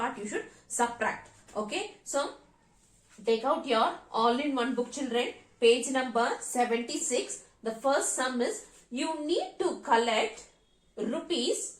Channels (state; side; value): identical; both; correlation 1.00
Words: you should subtract. Okay, so take out your all-in-one book children, page number 76. The first sum is you need to collect rupees